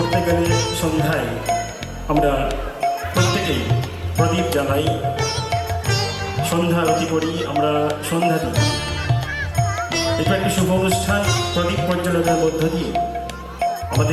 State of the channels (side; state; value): both; identical; correlation 1.00